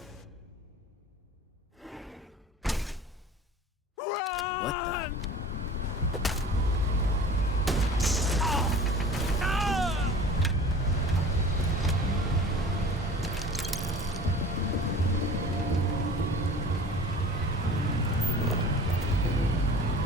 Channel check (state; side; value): normal; both; correlation 0.42